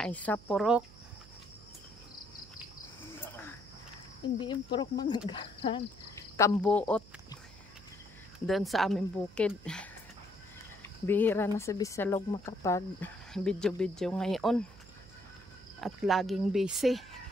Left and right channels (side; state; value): right; noise; hum, 21 dB below the sound